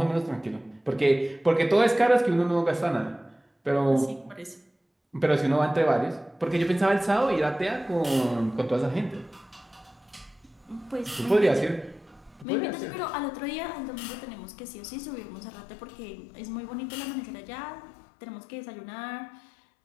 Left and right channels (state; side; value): drops out; right; at 12.5 s